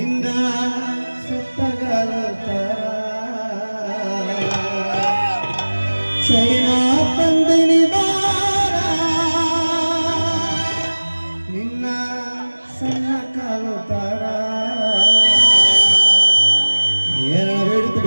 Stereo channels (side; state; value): both; inverted; correlation -1.00